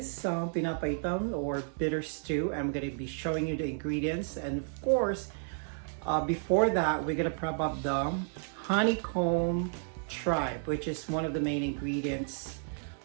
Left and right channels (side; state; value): left; silent; digital silence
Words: pinapaitan or bitter stew. I'm going to be showing you the ingredients, and of course, before that, we're going to prep up the honeycomb tripe, which is one of the main ingredients